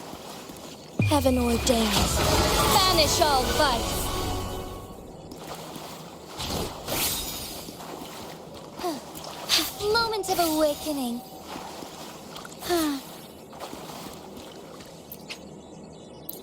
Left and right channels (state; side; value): identical; both; correlation 1.00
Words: Heaven ordains. Banish all vice. Moment of awakening.